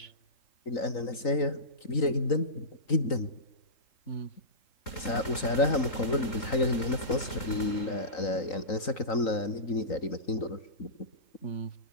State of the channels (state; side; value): late; right; 3.9 ms